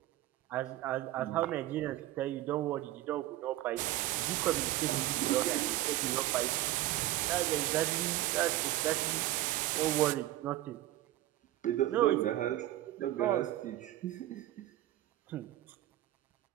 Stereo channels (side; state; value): left; quieter; 15.2 dB